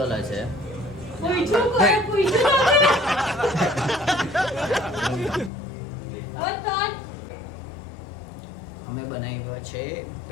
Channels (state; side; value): drops out; right; at 5.5 s